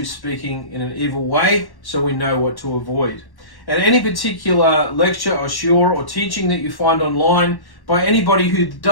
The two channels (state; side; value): late; right; 1.1 ms